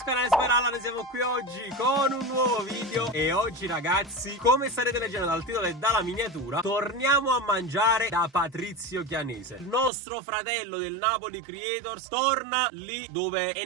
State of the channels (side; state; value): left; drops out; at 9.9 s